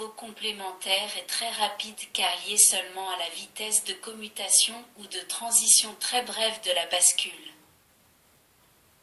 complémentaire est très rapide car lié seulement à la vitesse de commutation ou de transition très brève de la bascule.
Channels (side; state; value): both; identical; correlation 1.00